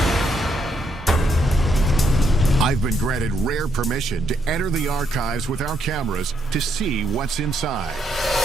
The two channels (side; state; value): both; normal; correlation 0.76